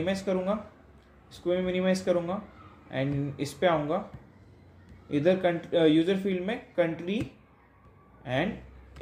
करूँगा, इसको मैं मिनिमाइज करूँगा एंड इस पे आऊँगा, इधर यूज़र फील्ड में कंट्री एंड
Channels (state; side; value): identical; both; correlation 1.00